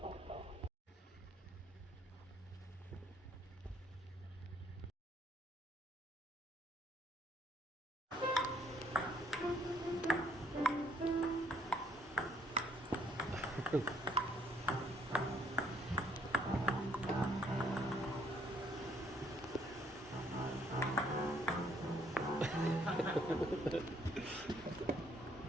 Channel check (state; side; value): normal; both; correlation 0.66